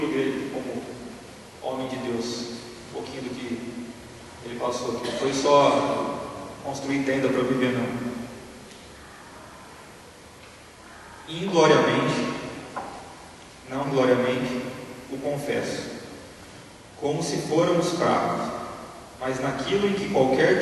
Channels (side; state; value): both; identical; correlation 1.00